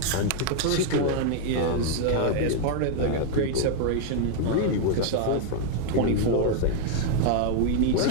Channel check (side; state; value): both; different; correlation 0.00